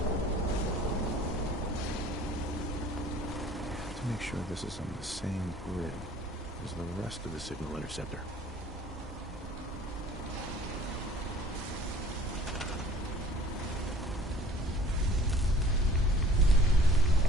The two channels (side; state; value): both; normal; correlation 0.51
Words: This is on the same grid as the rest of the signal interceptor.